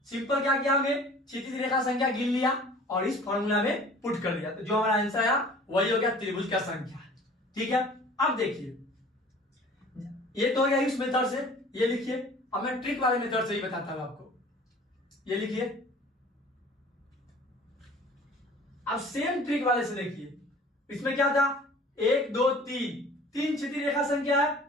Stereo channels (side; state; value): both; normal; correlation 0.48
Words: सिंपल क्या किया हमने क्षैतिज रेखा संख्या गिन लिया और इस फॉर्मूला में पुट कर दिया, तो जो हमारा आंसर आया वही हो गया त्रिभुज का संख्या। ठीक है, अब देखिए ये तो हो गया इस मेथड से, ये लिखिए। अब मैं ट्रिक वाले मेथड से ही बताता हूं आपको, ये लिखिए। अब सेम ट्रिक वाले से देखिए, इसमें क्या था 1 2 3 क्षैतिज रेखा संख्या है